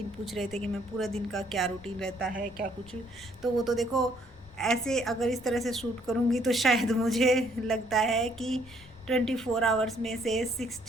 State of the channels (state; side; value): noise; left; rumble, 22 dB below the sound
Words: पूछ रहे थे कि मैं पूरा दिन का क्या रूटीन रहता है क्या कुछ, तो वो तो देखो ऐसे अगर इस तरह से शूट करूँगी तो शायद मुझे लगता है कि 24 आवर्स में से